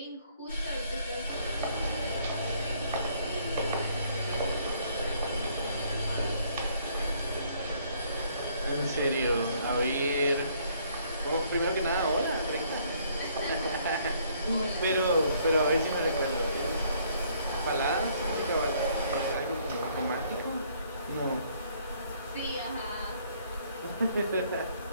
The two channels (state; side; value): inverted; both; correlation -0.65